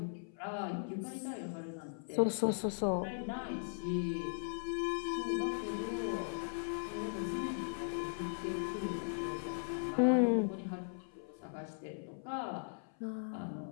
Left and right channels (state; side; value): silent; right; 52 dB below the other